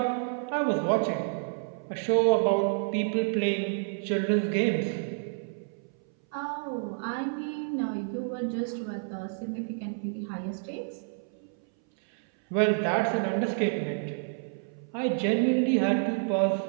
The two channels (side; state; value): left; silent; 58 dB below the other